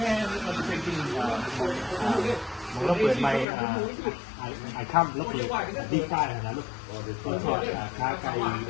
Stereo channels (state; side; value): drops out; right; at 3.5 s